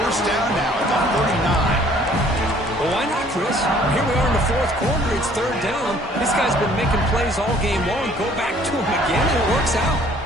down now at the 39. Well, why not, Chris? Here we are in the fourth quarter. It's third down. This guy's been making plays all game long. Go back to him again, and it works out.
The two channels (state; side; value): normal; both; correlation 0.58